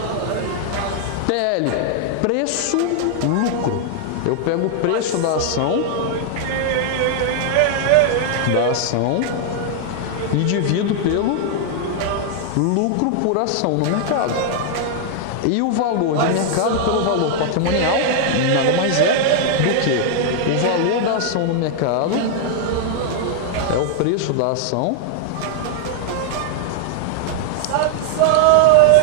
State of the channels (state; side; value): different; both; correlation 0.00